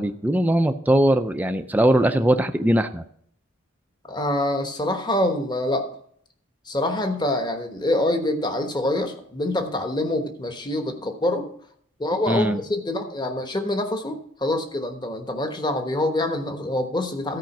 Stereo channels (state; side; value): normal; both; correlation 0.70